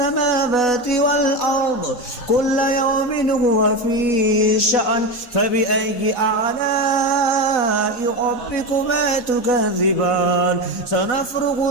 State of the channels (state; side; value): late; right; 4.1 ms